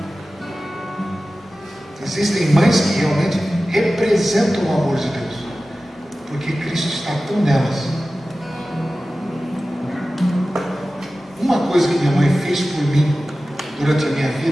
Existem mães que realmente representam o amor de Deus, porque Cristo está tão nelas. Uma coisa que minha mãe fez por mim durante a minha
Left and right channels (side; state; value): both; normal; correlation 0.95